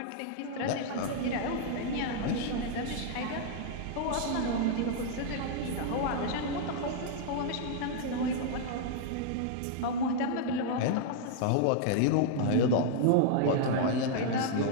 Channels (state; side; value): different; both; correlation -0.01